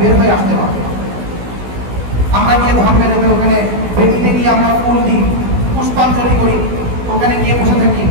হয়ে আসতে হবে। আমরা গিয়ে ধর্মের ওখানে বেদিতে গিয়ে আমরা ফুল দিই, পুষ্পাঞ্জলি করি, ওখানে গিয়ে বসে থাকি।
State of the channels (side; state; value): left; late; 16 ms